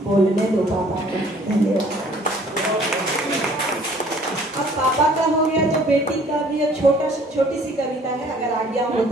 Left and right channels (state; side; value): normal; both; correlation 0.56